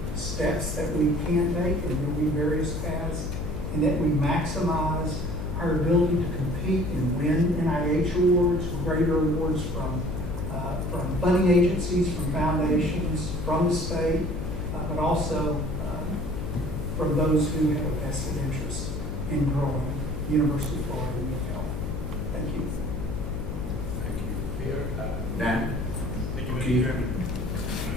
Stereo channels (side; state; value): left; noise; hum, 5 dB below the sound